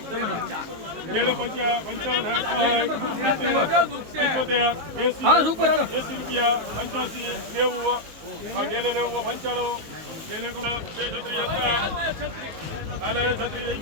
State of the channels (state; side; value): late; left; 19 ms